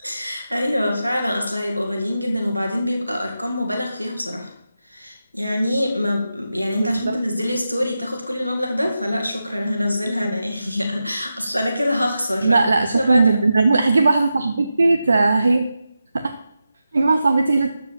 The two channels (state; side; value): inverted; both; correlation -0.90